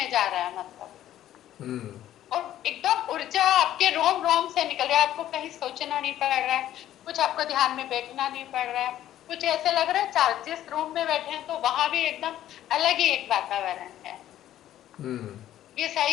जा रहा है मतलब। हम्म और एकदम ऊर्जा आपके रोम रोम से निकल रहा है, आपको कहीं सोचना नहीं पड़ रहा है, कुछ आपको ध्यान में बैठना नहीं पड़ रहा है, कुछ ऐसे लग रहा है चार जिस रूम में बैठे हैं तो वहां भी एकदम अलग ही एक वातावरण है। हम्म ये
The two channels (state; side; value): quieter; right; 12.5 dB